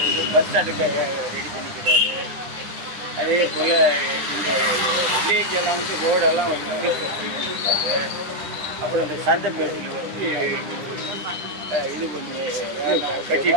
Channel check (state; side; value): late; left; 9.9 ms